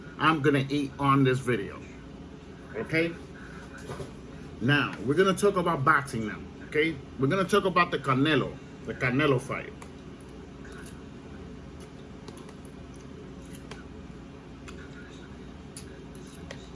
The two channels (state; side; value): identical; both; correlation 1.00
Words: I'm gonna eat on this video. Okay? Now, we're gonna talk about boxing now, okay? We're gonna talk about the Canelo fight.